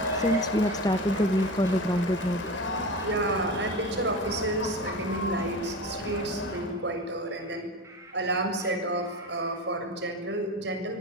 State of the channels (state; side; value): normal; both; correlation 0.28